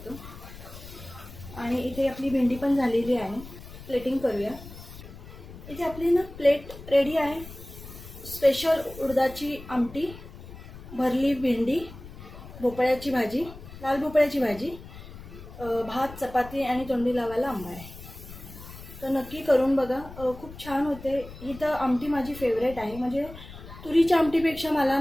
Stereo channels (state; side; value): noise; left; rumble, 15 dB below the sound